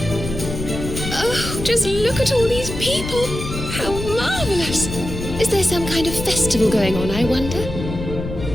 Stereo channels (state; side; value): noise; left; rumble, 7 dB below the sound